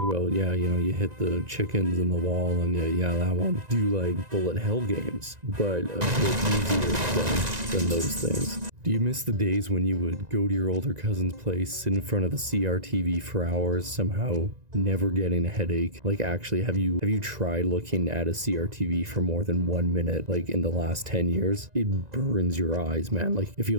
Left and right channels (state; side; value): late; left; 1.9 ms